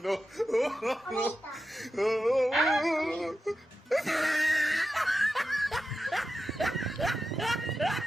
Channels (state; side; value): normal; both; correlation 0.91